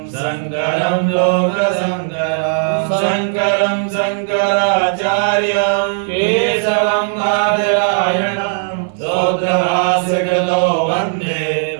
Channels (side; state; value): left; silent; digital silence